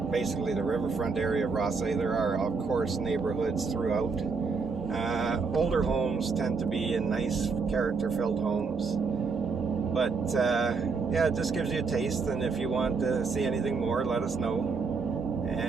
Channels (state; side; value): quieter; left; 4.8 dB